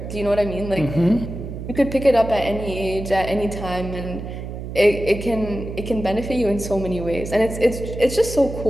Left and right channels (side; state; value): right; noise; hum, 8 dB below the sound